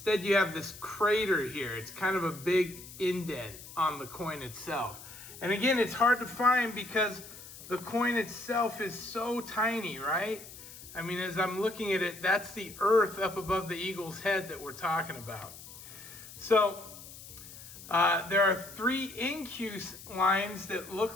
you have this crater here. It's kind of a big indent on the coin itself. And again, it's hard to find because the coin itself is so tiny, right? I mean, as I'm looking at it, that's the Earth up above the eagle's head that we're talking about. So there are 3 incuse lines that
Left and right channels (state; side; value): noise; left; hiss, 15 dB below the sound